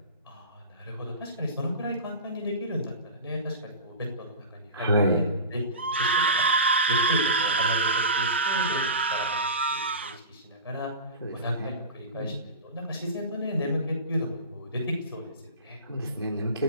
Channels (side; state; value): both; inverted; correlation -0.31